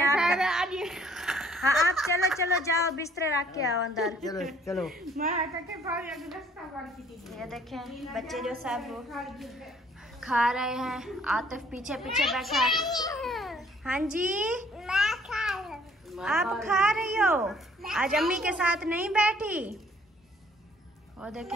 हाँ आप चलो चलो जाओ, बिस्तर रख के आओ अंदर। चलो चलो। मैं कहते भाभी अभी रास्ता बंद की थी। ये देखें बच्चे जो सब खा रहे हैं। आतिफ पीछे पीछे बैठा है। हाँ जी आप खा रही हो? आज अम्मी के साथ नहीं बैठी? और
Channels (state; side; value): normal; both; correlation 0.60